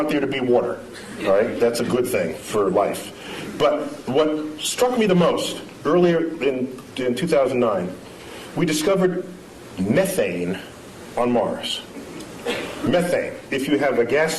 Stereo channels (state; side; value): identical; both; correlation 1.00